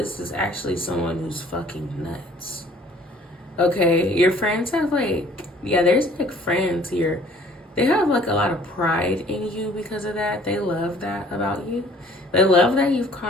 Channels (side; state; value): both; normal; correlation 0.55